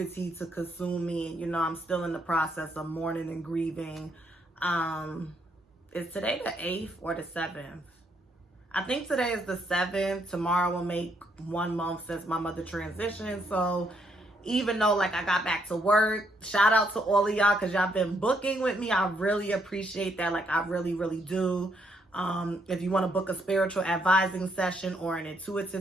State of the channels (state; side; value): normal; both; correlation 0.74